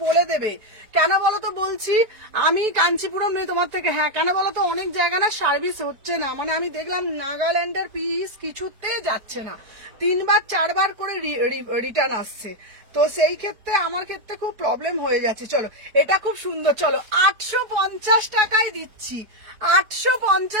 বলে দেবে। কেন বলো তো বলছি, আমি কাঞ্চিপুরম নেই তোমার থেকে। হ্যাঁ কেন বলো তো, অনেক জায়গা না সার্ভিস হচ্ছে না, মানে আমি দেখলাম নাগাল্যান্ডের পিস কিছুতে যাচ্ছে না, 3 বার 4 বার করে রিটার্ন আসছে। তো সেই ক্ষেত্রে আমার ক্ষেত্রে খুব প্রবলেম হয়ে যাচ্ছে। চলো এটা খুব সুন্দর। চলো 850 টাকায় দিচ্ছি।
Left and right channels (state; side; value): late; left; 4.7 ms